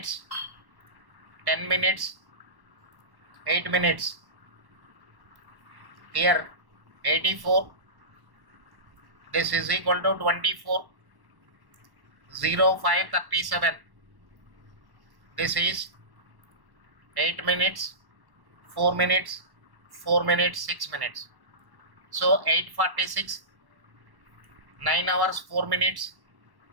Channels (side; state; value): left; late; 1.1 ms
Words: 10 minutes, 8 minutes. Here 84. This is equal to 24. 05:37. This is 8 minutes, 4 minutes, 4 minutes, 6 minutes. So 8:46. 9 hours 4 minutes.